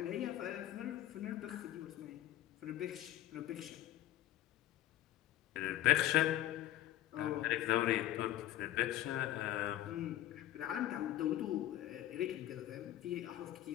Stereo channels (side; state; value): right; quieter; 13.5 dB